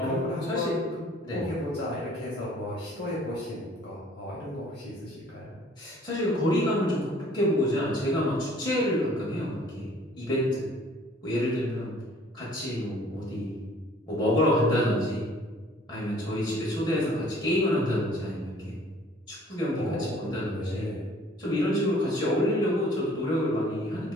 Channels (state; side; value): normal; both; correlation 0.55